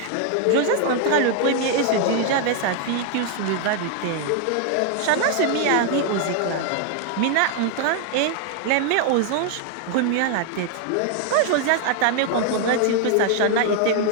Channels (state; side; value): different; both; correlation 0.00